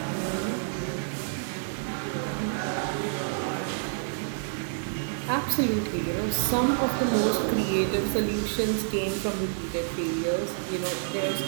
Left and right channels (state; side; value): silent; left; digital silence